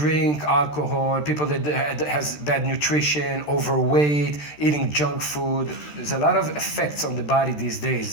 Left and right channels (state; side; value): late; right; 13 ms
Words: alcohol, people that has bad nutrition, overweight, eating junk food. There's a lot of effects on the body these